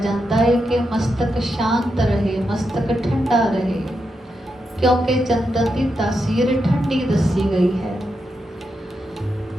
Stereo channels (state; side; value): normal; both; correlation 0.85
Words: ਹੈ ਕਿ ਮਸਤਕ ਸ਼ਾਂਤ ਰਹੇ, ਮਸਤਕ ਠੰਡਾ ਰਹੇ, ਕਿਉਂਕਿ ਚੰਦਨ ਦੀ ਤਾਸੀਰ ਠੰਡੀ ਦੱਸੀ ਗਈ ਹੈ।